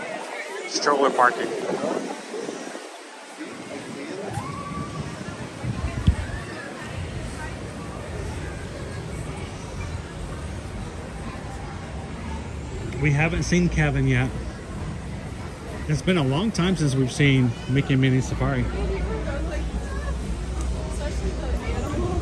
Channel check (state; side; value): identical; both; correlation 1.00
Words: Stroller parking. We haven't seen Kevin yet. It's been a long time since we've seen Mickey and Minnie Safari.